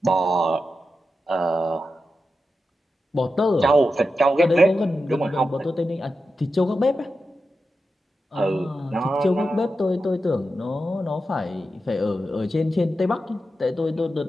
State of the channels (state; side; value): normal; both; correlation 0.90